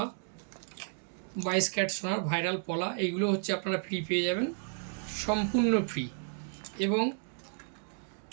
22 ক্যারেট সোনার ভাইরাল পলা। এইগুলো হচ্ছে আপনারা ফ্রি পেয়ে যাবেন, সম্পূর্ণ ফ্রি। এবং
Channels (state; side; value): silent; left; 56 dB below the other